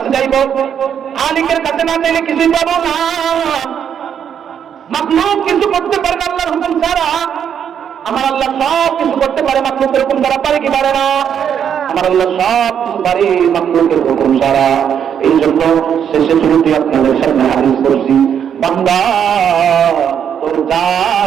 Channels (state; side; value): quieter; left; 8.4 dB